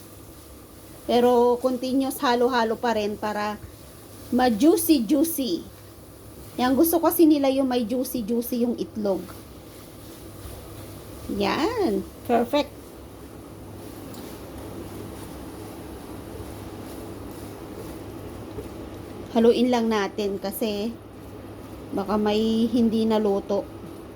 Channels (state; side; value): identical; both; correlation 1.00